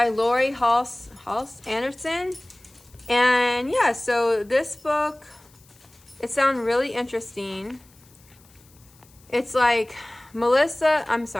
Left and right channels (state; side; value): noise; left; hiss, 28 dB below the sound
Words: Lori Halse Anderson. And yeah, so this book, it sounds really interesting. It's like